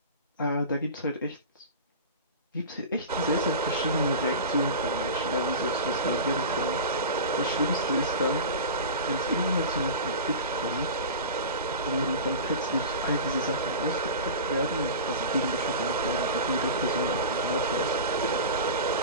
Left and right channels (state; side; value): inverted; both; correlation -0.31